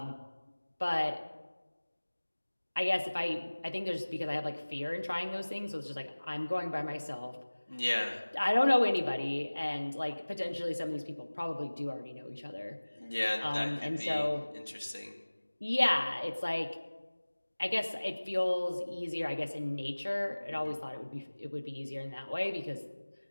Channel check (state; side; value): inverted; both; correlation -1.00